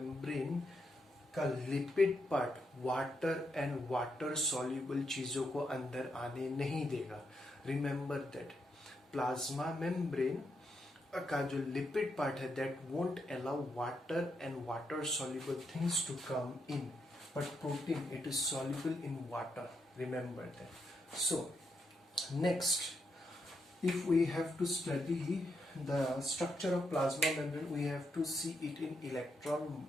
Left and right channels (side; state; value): both; normal; correlation 0.81